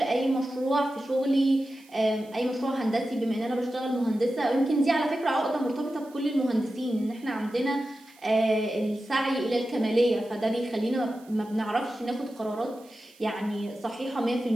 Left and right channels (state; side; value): noise; right; hiss, 27 dB below the sound